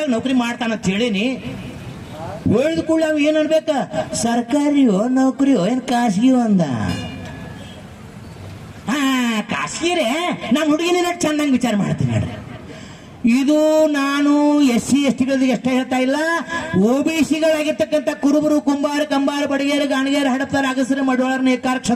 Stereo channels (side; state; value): both; identical; correlation 1.00